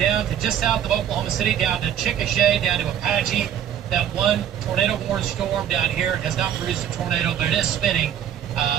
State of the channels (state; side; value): quieter; left; 9.8 dB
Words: to just south of Oklahoma City, down to Chickasha, down to Apache. That one tornado-warned storm down here has not produced a tornado, but it is spinning